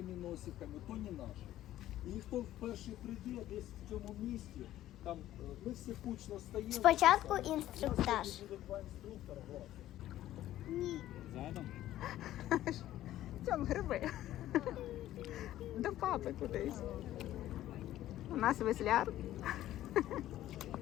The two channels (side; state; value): right; quieter; 13.6 dB